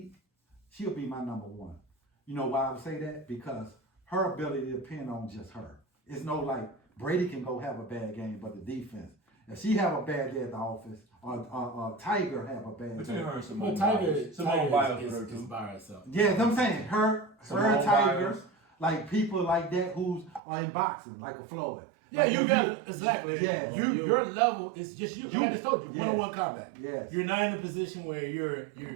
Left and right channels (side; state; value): left; drops out; at 20.4 s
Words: she'll be my number 1. You know why I would say that? Because her ability to depend on just her. It's no like Brady can go have a bad game, but the defense. If she have a bad day at the office, or Tiger have a bad Between day. her and Simone Tiger with her too. is by herself. Yeah, I'm saying her Tiger, Biles. like people like that who's are in boxing, like a Floyd. Yeah, like you got it. Exactly. Yeah. Your level is just you. I just told you, Yes. one-on-one combat. Yes. You're not in a position where